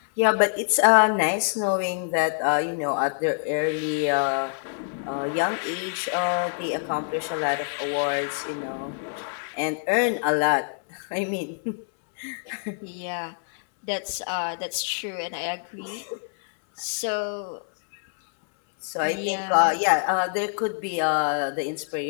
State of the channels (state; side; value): silent; right; 61 dB below the other